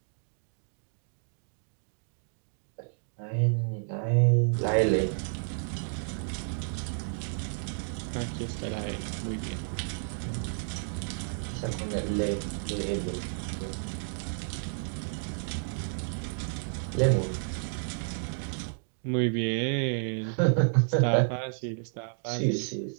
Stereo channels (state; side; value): silent; left; digital silence